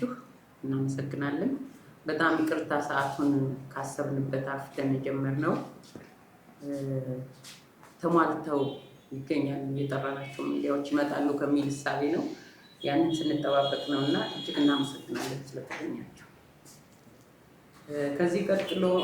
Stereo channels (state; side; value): identical; both; correlation 1.00